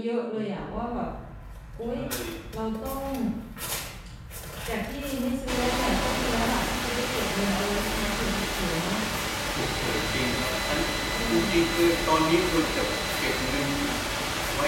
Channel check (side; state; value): both; identical; correlation 1.00